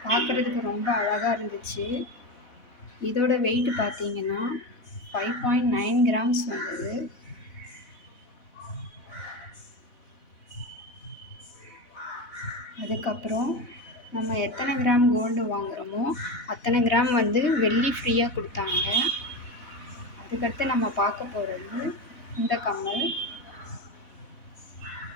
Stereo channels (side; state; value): right; late; 4.1 ms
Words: பார்க்குறதுக்கு ரொம்ப அழகாக இருந்துச்சு. இதோட வெயிட் பார்த்தீங்கன்னா 5.9 கிராம்ஸ் வந்தது. அதுக்கப்புறம் நம்ம எத்தனை கிராம் கோல்டு வாங்குகிறோமோ அத்தனை கிராம் வந்து வெள்ளி ஃப்ரீயாக கொடுத்தாங்க. அதுக்கடுத்து நம்ம பார்க்க போகிறது இந்த கம்மல்.